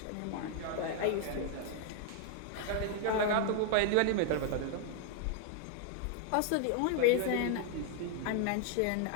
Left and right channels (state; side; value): different; both; correlation 0.00